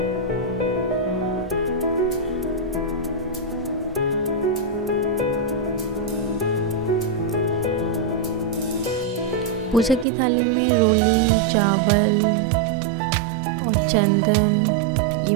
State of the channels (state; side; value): drops out; left; at 10.1 s